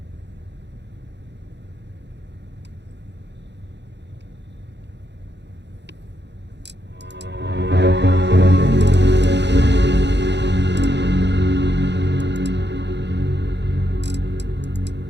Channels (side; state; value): left; late; 0.51 ms